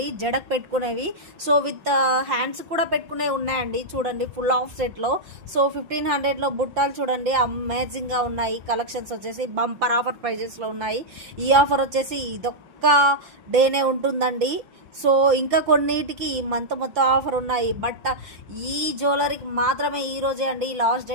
జడకు పెట్టుకునేవి. సో విత్ హ్యాండ్స్ కూడా పెట్టుకునేవి ఉన్నాయండి చూడండి, ఫుల్ ఆఫ్ సెట్లో. సో 1500లో బుట్టాలు చూడండి, అమేజింగ్గా ఉన్నాయి. కలెక్షన్స్ వచ్చేసి బంపర్ ఆఫర్ ప్రైజెస్లో ఉన్నాయి. ఈ ఆఫర్ వచ్చేసి ఇదొక్క డేనే ఉంటుందండి. సో ఇంకా కొన్నిటికి ఈ మంత్ మొత్తం ఆఫర్ ఉన్నాయి, బట్ ఈ జ్యువెలరీకి మాత్రమే ఈరోజే అండి లాస్ట్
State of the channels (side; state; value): left; late; 5.9 ms